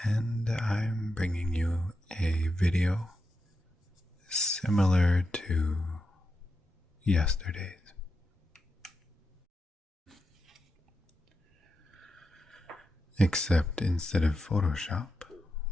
and I'm bringing you a video similar to yesterday's. Except instead of Photoshop,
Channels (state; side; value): normal; both; correlation 0.87